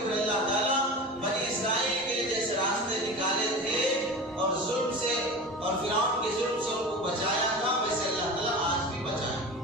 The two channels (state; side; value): normal; both; correlation 0.31